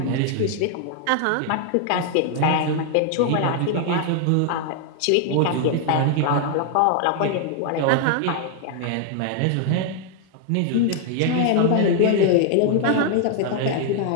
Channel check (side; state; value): both; different; correlation 0.00